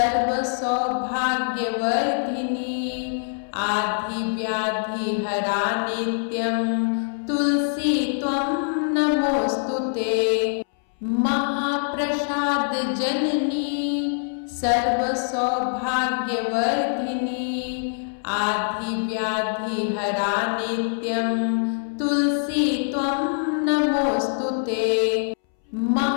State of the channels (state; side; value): silent; right; 63 dB below the other